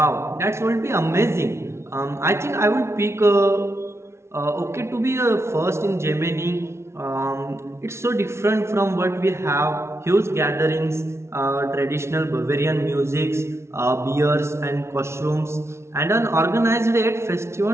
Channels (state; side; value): late; left; 0.13 ms